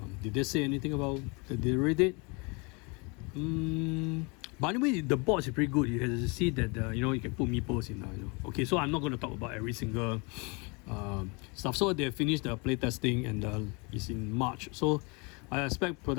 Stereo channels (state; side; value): quieter; right; 30.4 dB